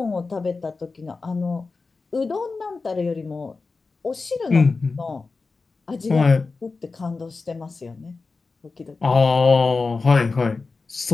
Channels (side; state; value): right; quieter; 4.1 dB